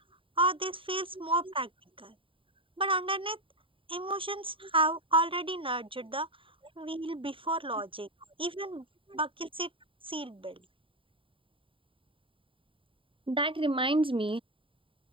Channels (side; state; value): left; late; 0.25 ms